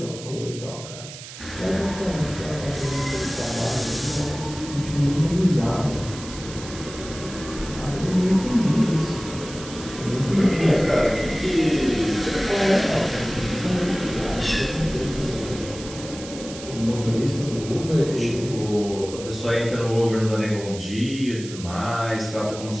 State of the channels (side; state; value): right; noise; hiss, 13 dB below the sound